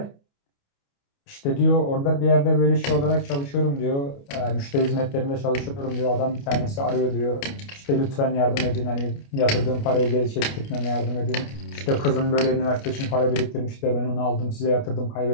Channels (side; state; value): right; late; 29 ms